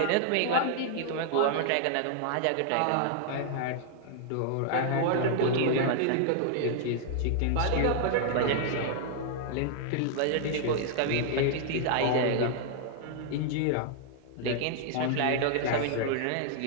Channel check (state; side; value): different; both; correlation -0.01